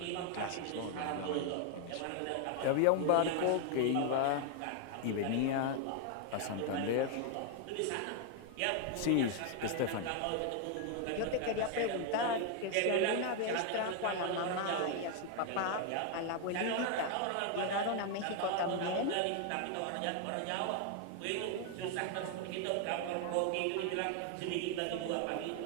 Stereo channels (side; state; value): both; different; correlation 0.00